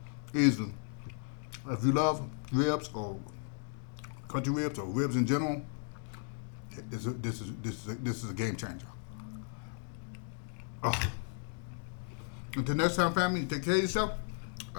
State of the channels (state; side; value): silent; right; 54 dB below the other